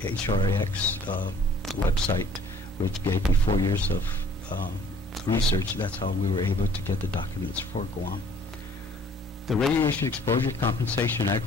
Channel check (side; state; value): both; normal; correlation 0.55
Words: website, which gave me 4 years of research. That's how we were able to get the documents for Guam. The Radiation Exposure Compensation